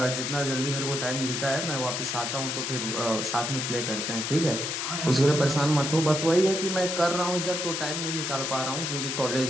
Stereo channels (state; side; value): noise; left; hiss, 2 dB below the sound